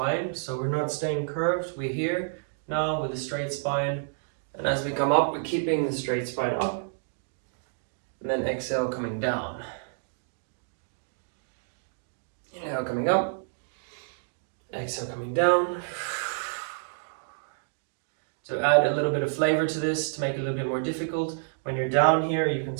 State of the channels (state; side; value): silent; left; digital silence